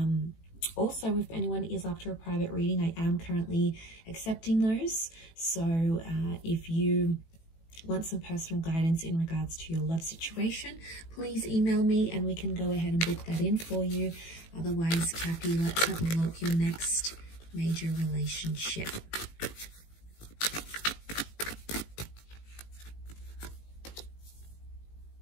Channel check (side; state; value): right; late; 18 ms